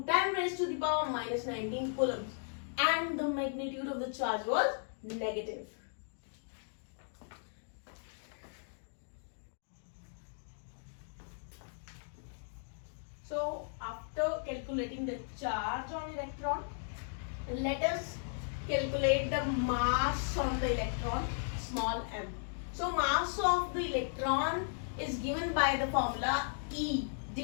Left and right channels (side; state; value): right; silent; digital silence